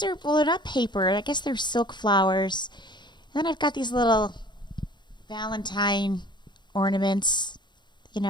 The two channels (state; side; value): late; right; 0.22 ms